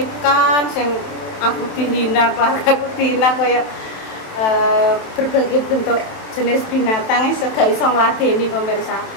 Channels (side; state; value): right; late; 27 ms